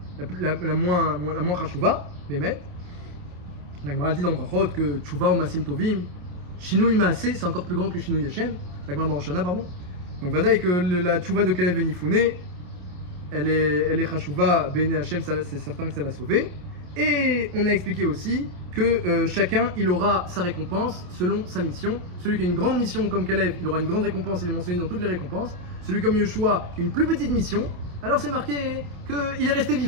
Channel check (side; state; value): left; late; 28 ms